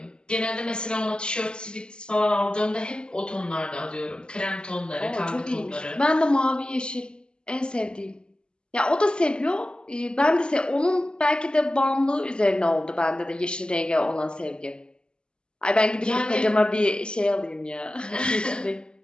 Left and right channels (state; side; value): late; right; 0.049 ms